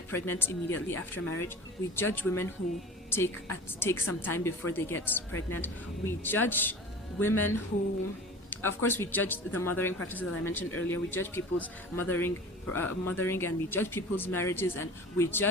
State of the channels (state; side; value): normal; both; correlation 0.40